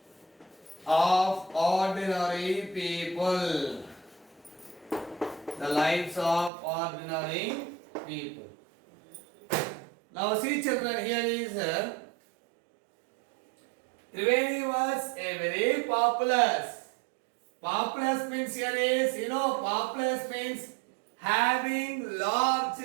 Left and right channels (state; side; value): drops out; left; at 6.5 s